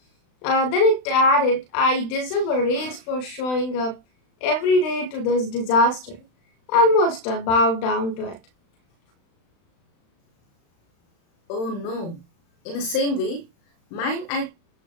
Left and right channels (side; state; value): right; late; 35 ms